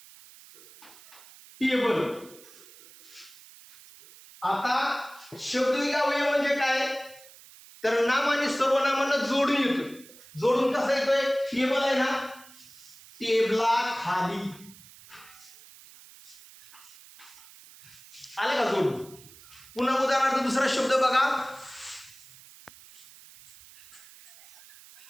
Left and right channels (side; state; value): right; noise; hiss, 21 dB below the sound